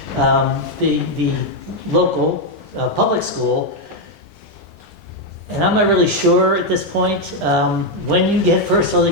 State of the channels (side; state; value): both; normal; correlation 0.02